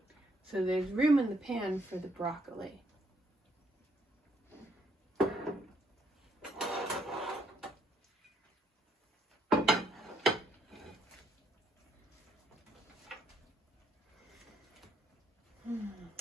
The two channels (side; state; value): both; normal; correlation 0.71